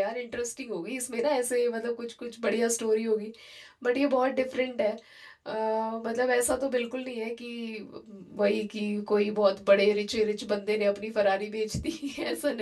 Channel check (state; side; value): identical; both; correlation 1.00